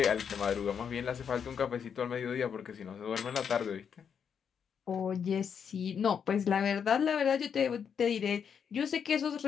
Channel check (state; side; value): quieter; right; 7.3 dB